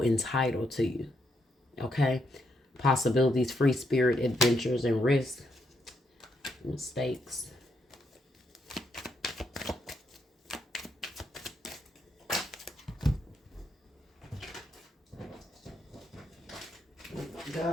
entitled to you. Okay. Possibilities, free spirit, adventures, and risk. Mistakes.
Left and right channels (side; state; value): both; normal; correlation 0.78